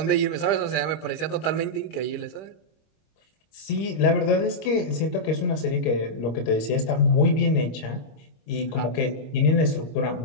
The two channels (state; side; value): late; right; 26 ms